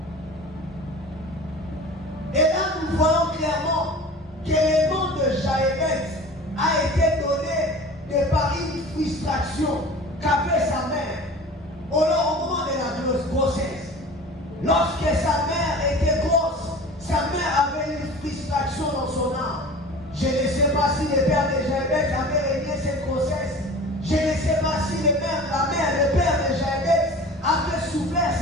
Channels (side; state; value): both; normal; correlation 0.39